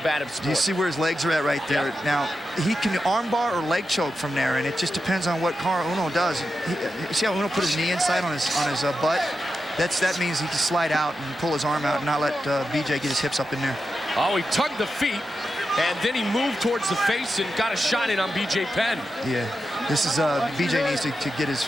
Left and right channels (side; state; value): both; normal; correlation 0.89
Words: sport. Do you see where his legs are at right there? Yep. Now, he can armbar or leg choke from there, and it just depends on what Caol Uno does. You see how Uno put his knee inside on his butt? That means he can slide out and pull his arm out and not let BJ get his hips up in there. Oh, he tugged the feet, and then he moved towards the face and got a shot in on BJ Penn. Yeah, this is BJ needs to get his